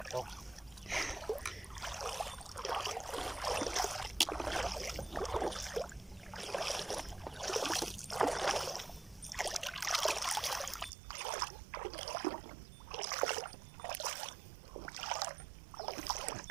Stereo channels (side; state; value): left; drops out; at 10.9 s